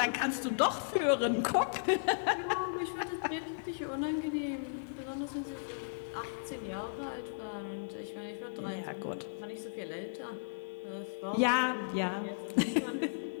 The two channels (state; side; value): silent; right; digital silence